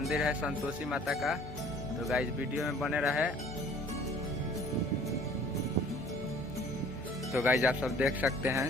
है संतोषी माता का। तो गाइज वीडियो में बने रहे। तो गाइज आप सब देख सकते हैं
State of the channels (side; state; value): both; normal; correlation 0.53